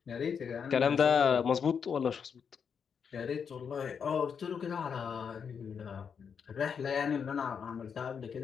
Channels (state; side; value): quieter; right; 6.7 dB